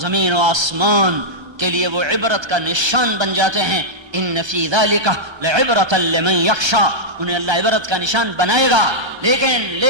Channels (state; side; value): late; left; 1.3 ms